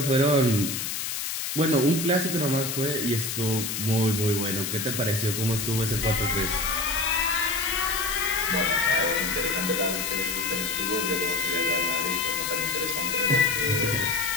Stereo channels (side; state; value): left; noise; hiss, 3 dB below the sound